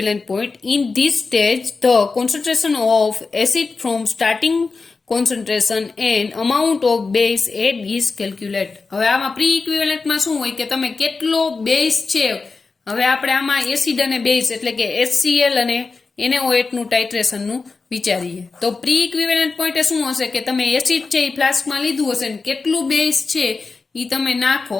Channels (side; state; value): right; quieter; 4.3 dB